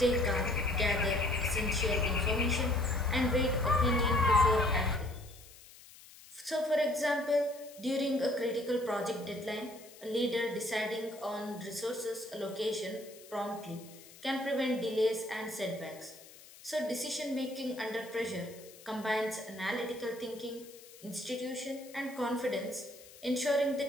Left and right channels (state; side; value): noise; left; hiss, 20 dB below the sound